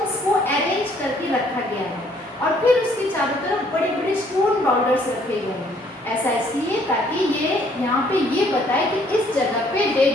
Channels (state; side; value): normal; both; correlation 0.63